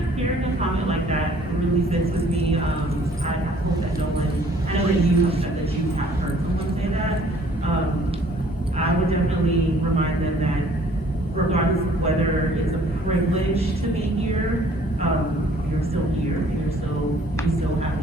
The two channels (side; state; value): both; normal; correlation 0.57